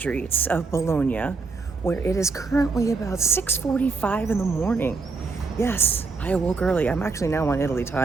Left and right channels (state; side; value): quieter; left; 4.2 dB